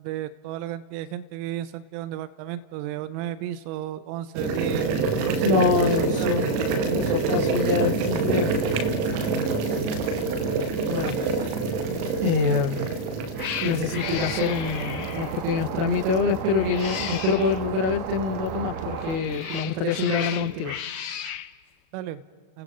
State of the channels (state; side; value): late; left; 37 ms